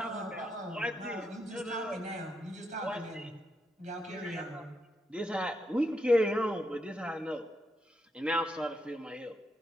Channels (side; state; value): both; normal; correlation 0.81